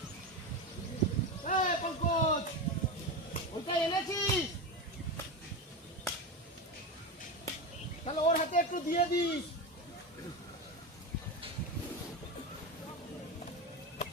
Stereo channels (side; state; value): both; normal; correlation 0.18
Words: তাহলে ওর হাতে একটু দিয়ে দিস।